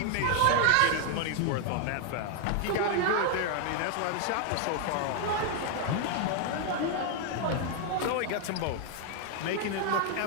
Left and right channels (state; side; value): different; both; correlation 0.00